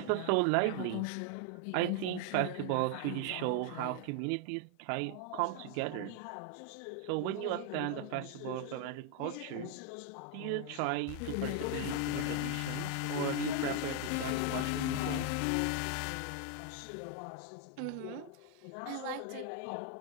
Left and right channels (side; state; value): both; different; correlation 0.00